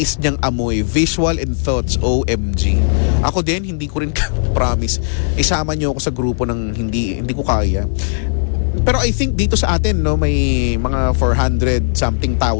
niyang amoy, visual and thoughts, OMG. Ako din, hindi ko rin promise. Isama niyo ako sa grupo ng hindi ko kaya. Pero I think dito sa atin, may mga 400 something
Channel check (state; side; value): silent; right; digital silence